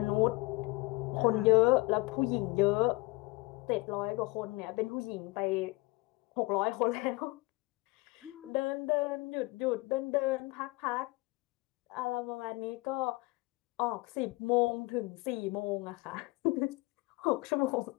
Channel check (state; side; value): quieter; right; 23.1 dB